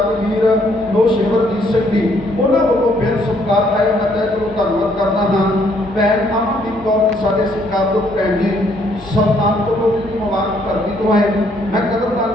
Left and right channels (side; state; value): both; normal; correlation 0.67